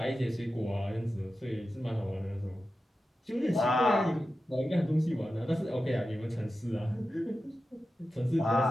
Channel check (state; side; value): normal; both; correlation 0.92